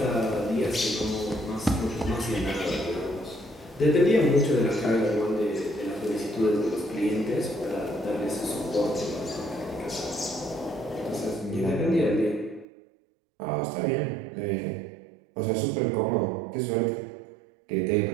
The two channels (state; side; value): drops out; left; at 12.7 s